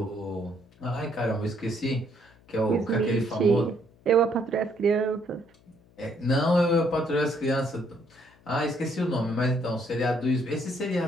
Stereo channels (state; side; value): noise; left; hum, 29 dB below the sound